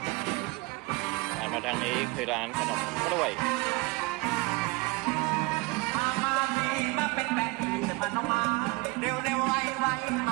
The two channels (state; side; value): quieter; left; 24.1 dB